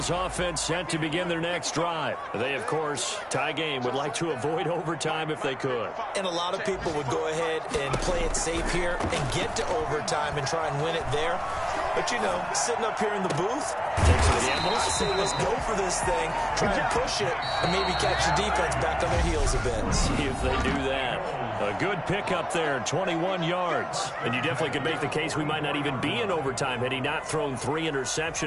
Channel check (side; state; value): both; identical; correlation 1.00